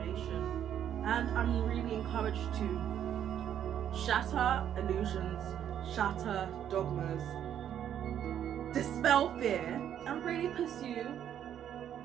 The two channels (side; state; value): left; quieter; 9.9 dB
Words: And I'm really encouraged to shatter illusions, shatter dogmas, dispel fear, and really pursue